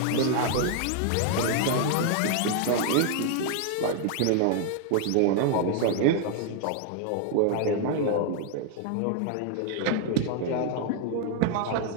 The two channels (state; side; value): different; both; correlation 0.00